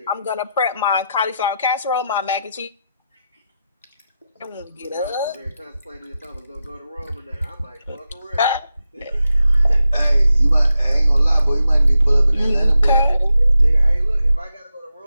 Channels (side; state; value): both; inverted; correlation -0.88